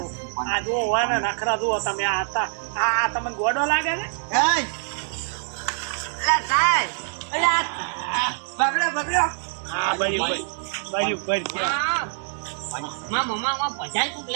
આ જો હોય ને નખરા જુઓ તમે આ હતા આ તમને ગોડો લાગે છે એ અલા સાહેબ અલા પકડો પકડો આ બરી બરી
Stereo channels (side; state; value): left; silent; digital silence